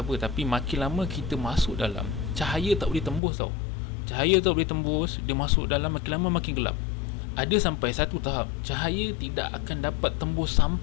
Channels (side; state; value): right; drops out; at 3.2 s